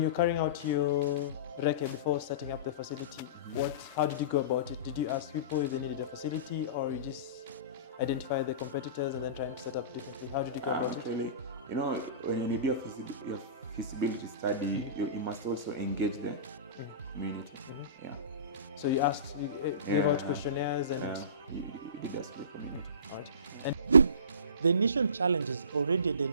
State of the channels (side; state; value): both; inverted; correlation -0.35